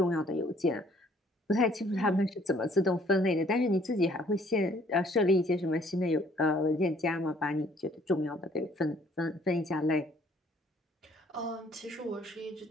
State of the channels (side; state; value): both; normal; correlation 0.60